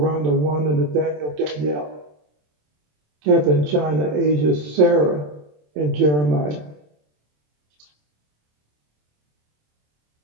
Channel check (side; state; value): left; late; 27 ms